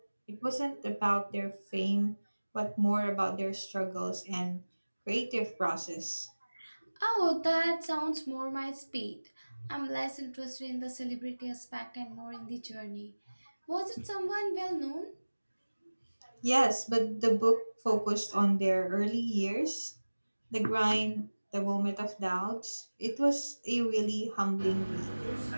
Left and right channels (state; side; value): inverted; both; correlation -1.00